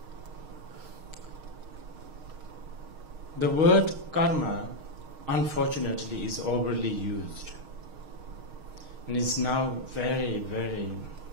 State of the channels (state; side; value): late; left; 6.4 ms